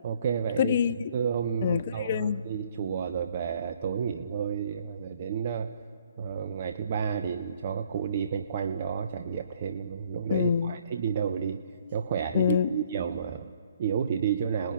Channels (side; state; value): both; inverted; correlation -0.61